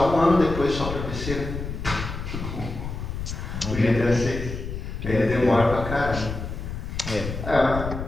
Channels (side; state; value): left; noise; rumble, 6 dB below the sound